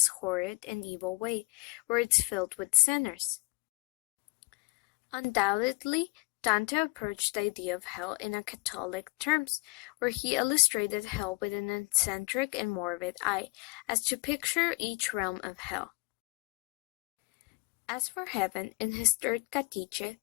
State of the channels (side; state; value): right; quieter; 27.8 dB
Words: horrid, and evil way, where it's filled with sinners. Undoubtedly, Dante approached the idea of hell in a Catholic terms, where he illustrated hell with an eccentric and morbid eye, as to picture each realm of hell. As for heaven, in his third Catiche,